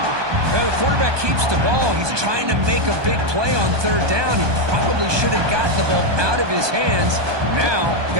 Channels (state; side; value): late; left; 1.2 ms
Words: Well, the quarterback keeps the ball. He's trying to make a big play on 3rd down. He probably should have gotten the ball out of his hands. Now,